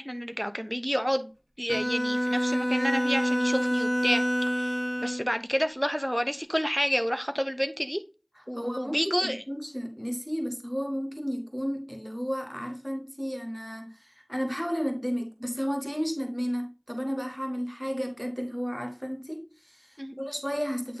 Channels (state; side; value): identical; both; correlation 1.00